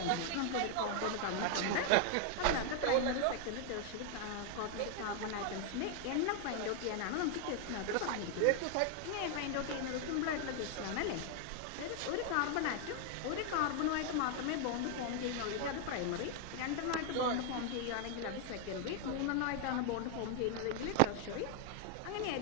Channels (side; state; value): both; different; correlation 0.00